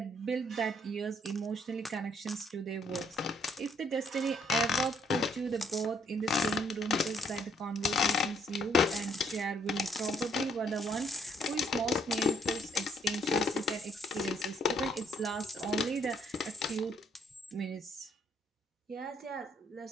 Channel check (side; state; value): both; normal; correlation 0.68